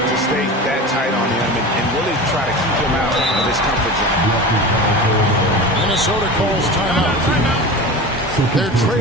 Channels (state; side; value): normal; both; correlation 0.31